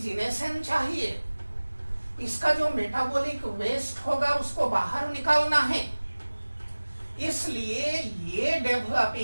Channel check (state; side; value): inverted; both; correlation -1.00